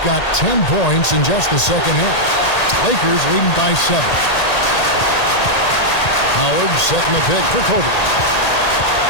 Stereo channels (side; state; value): right; late; 1.8 ms